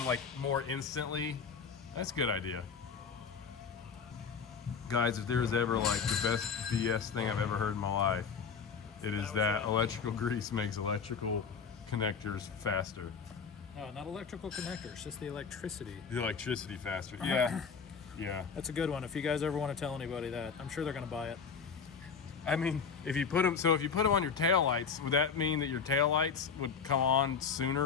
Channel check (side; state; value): right; quieter; 5.9 dB